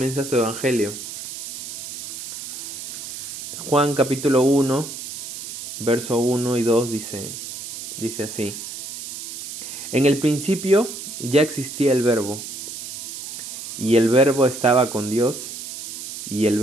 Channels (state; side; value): noise; right; hiss, 9 dB below the sound